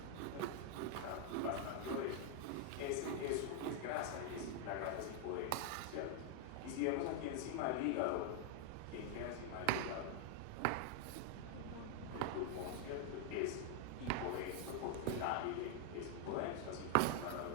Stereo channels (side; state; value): both; different; correlation 0.00